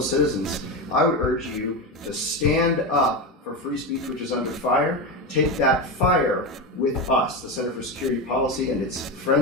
I would urge you to stand up for free speech, which is under fire. Take that fire with us, the Center for Security Policy and its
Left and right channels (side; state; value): both; normal; correlation 0.18